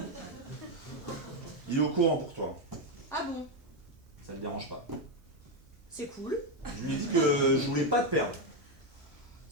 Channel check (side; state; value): both; normal; correlation 0.06